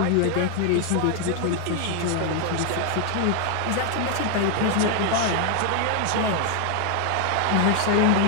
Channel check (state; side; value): different; both; correlation 0.00